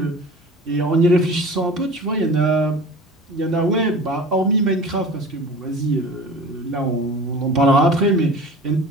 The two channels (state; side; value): normal; both; correlation 0.39